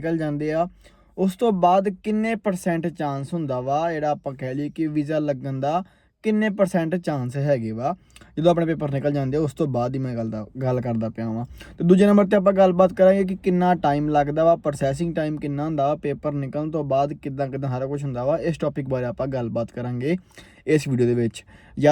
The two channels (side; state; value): both; identical; correlation 1.00